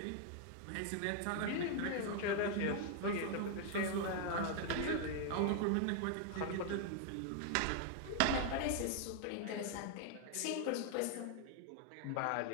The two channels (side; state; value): both; different; correlation 0.00